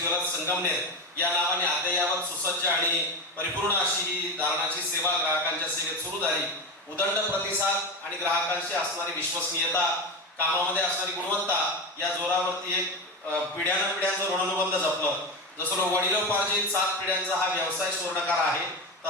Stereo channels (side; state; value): both; normal; correlation 0.20